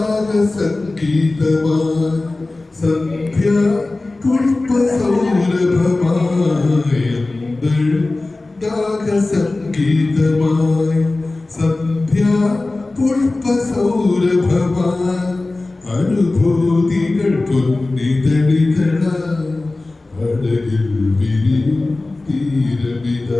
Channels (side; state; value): right; quieter; 3.1 dB